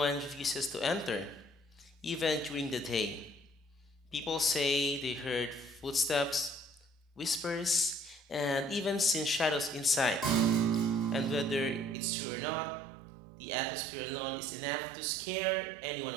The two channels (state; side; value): drops out; left; at 12.0 s